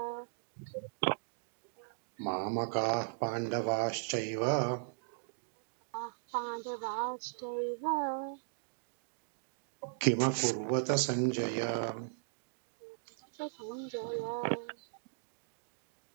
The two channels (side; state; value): left; silent; digital silence